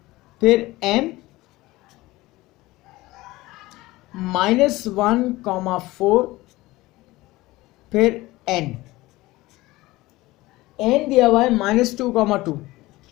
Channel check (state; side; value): quieter; right; 19.2 dB